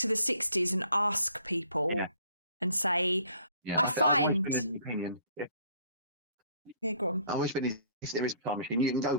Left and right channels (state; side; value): inverted; both; correlation -0.59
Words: the 60s and ask people and say, I find. Yeah, go on. I've always been, if there is a time machine, you can go